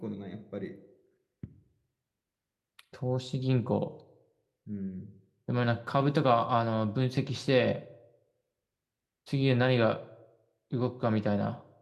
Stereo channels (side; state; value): both; identical; correlation 1.00